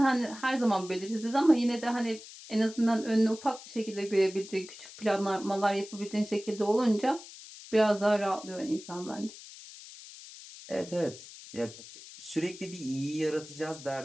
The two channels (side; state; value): left; noise; hiss, 16 dB below the sound